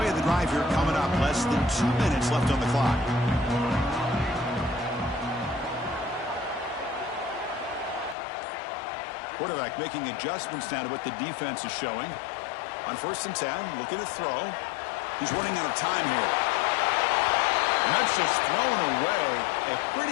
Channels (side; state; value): right; drops out; at 8.2 s